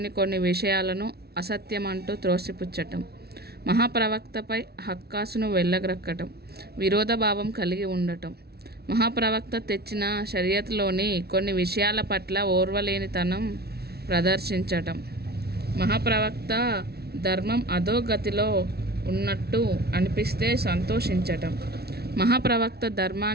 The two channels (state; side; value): late; left; 0.46 ms